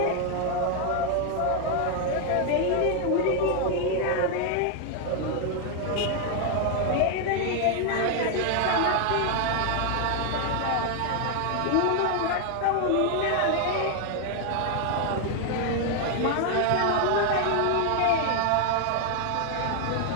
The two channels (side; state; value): both; different; correlation 0.00